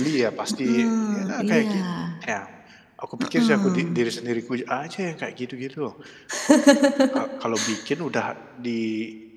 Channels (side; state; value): both; identical; correlation 1.00